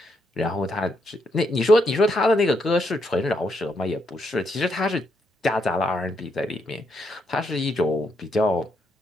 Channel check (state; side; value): normal; both; correlation 0.78